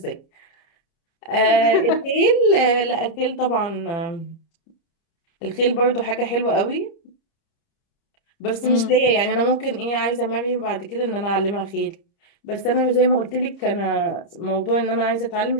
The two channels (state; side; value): late; right; 30 ms